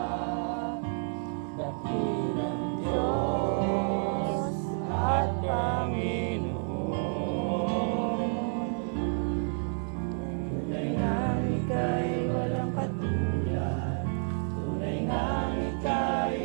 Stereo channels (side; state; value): left; silent; 58 dB below the other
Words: dakilang Diyos at Panginoon. Tunay ngang ika'y walang katulad. Tunay ngang